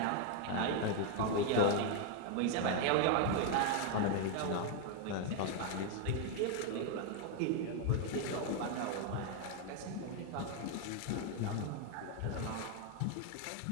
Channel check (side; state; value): both; different; correlation 0.01